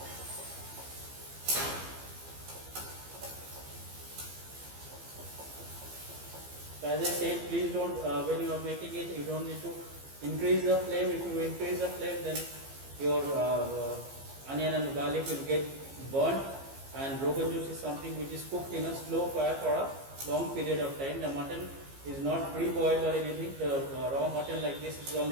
So as I said, please don't, when you are making it, you don't need to increase the flame. If you increase the flame, then your onion and garlic will get burnt, and Rogan Josh is something which is cooked in a slow fire for a long period of time. The mutton is not pre-boiled or anything. The raw mutton like this is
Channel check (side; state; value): left; late; 15 ms